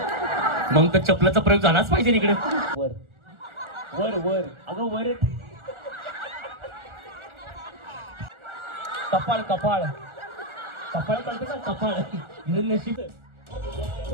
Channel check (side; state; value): left; late; 1.4 ms